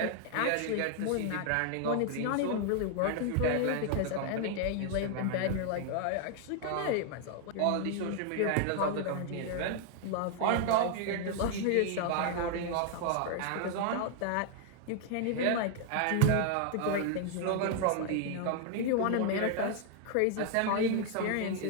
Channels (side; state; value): both; different; correlation 0.00